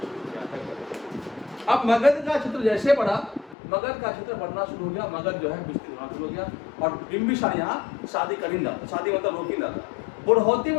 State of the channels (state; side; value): drops out; right; at 3.6 s